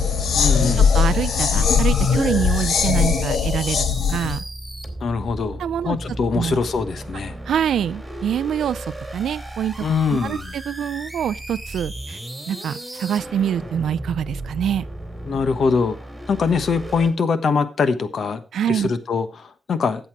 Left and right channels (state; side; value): normal; both; correlation 0.71